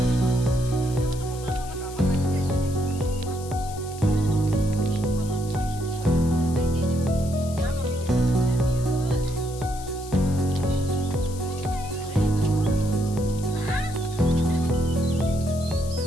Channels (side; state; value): left; noise; hiss, 16 dB below the sound